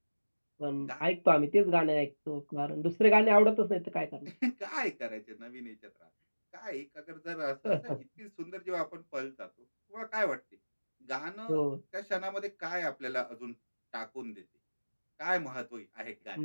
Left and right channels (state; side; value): inverted; both; correlation -1.00